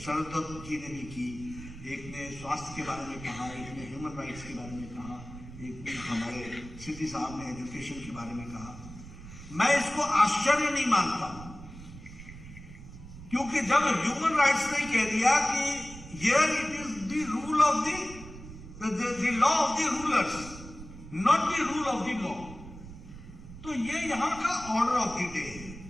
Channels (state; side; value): noise; right; rumble, 14 dB below the sound